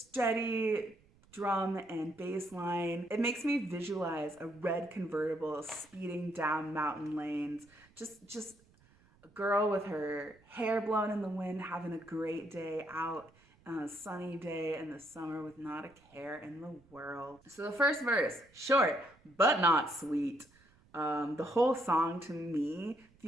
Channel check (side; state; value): right; noise; rumble, 30 dB below the sound